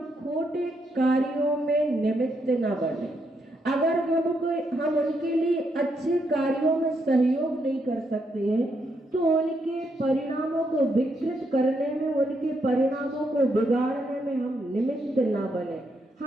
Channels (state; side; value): normal; both; correlation 0.78